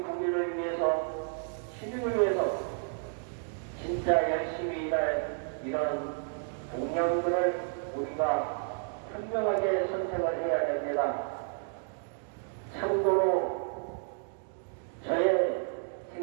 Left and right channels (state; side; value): silent; left; 57 dB below the other